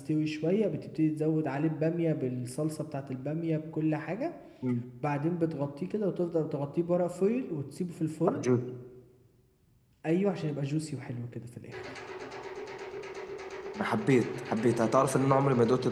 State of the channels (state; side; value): identical; both; correlation 1.00